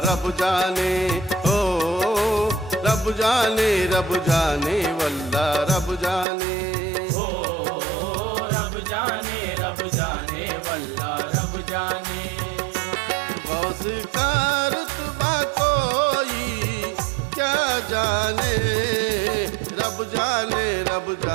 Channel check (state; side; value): drops out; left; at 6.2 s